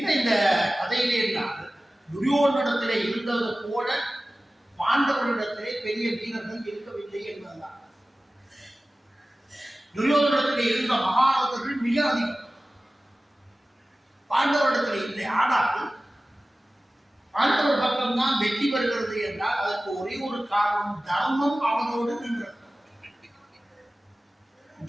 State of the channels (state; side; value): normal; both; correlation 0.97